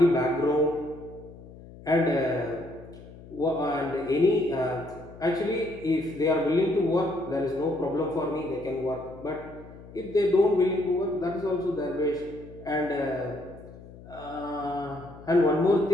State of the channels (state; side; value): noise; left; hum, 18 dB below the sound